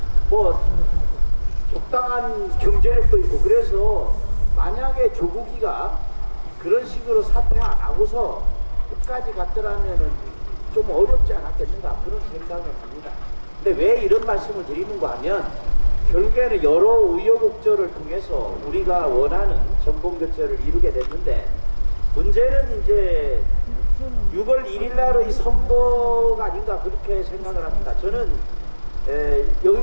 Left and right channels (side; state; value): both; inverted; correlation -1.00